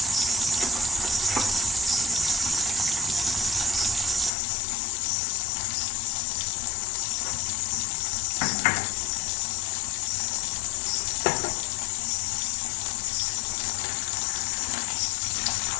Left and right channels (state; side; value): drops out; right; at 4.3 s